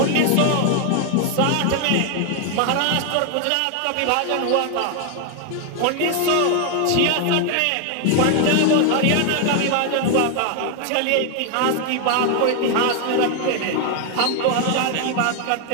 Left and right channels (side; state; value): both; different; correlation 0.00